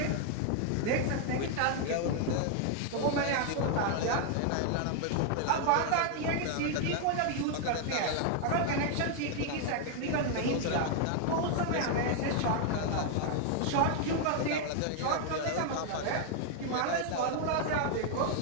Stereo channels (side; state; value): both; different; correlation 0.00